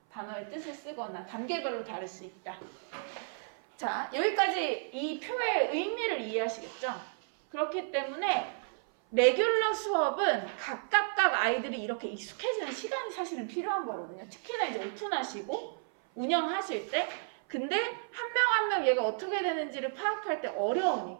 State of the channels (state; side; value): silent; left; 56 dB below the other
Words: 단어의 뜻을 쓰거나 단계별로 다를 수 있다. 자, 여기까지 이 표의 의미를 이해하시겠죠? 그렇기 때문에 레귤러 수업은 각각 아이들이 이렇게 익숙해지는 시간이 사실은 필요한 거거든요. 특히나 이제 오픈하시고 운영하실 때. 근데 한 명 한 명 얘가 어떻게 되는지를 파악할 때